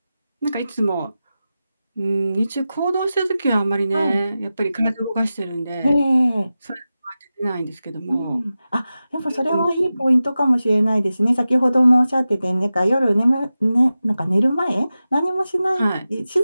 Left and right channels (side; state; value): both; inverted; correlation -0.94